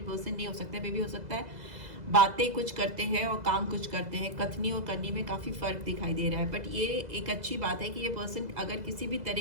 पर्सन नहीं हो सकता, मे भी हो सकता है बातें कुछ करते हैं और काम कुछ करते हैं, कथनी और करनी में काफ़ी फ़र्क दिखाई दे रहा है। बट ये एक अच्छी बात है कि ये पर्सन अगर किसी भी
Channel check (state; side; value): late; left; 2.0 ms